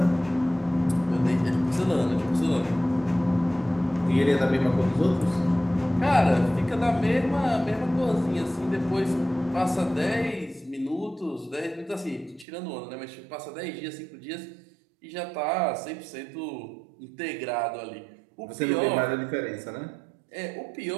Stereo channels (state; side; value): drops out; left; at 12.5 s